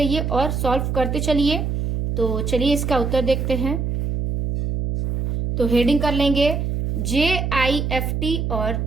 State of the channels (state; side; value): noise; right; hum, 1 dB below the sound